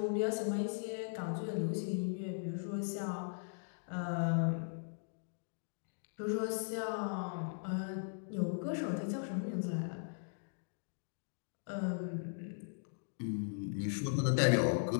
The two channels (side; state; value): right; silent; digital silence